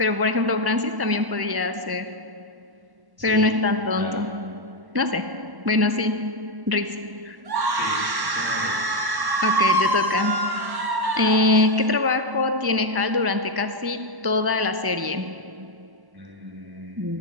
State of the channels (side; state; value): left; late; 1.1 ms